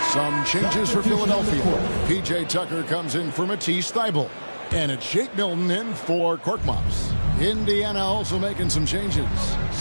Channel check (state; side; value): inverted; both; correlation -1.00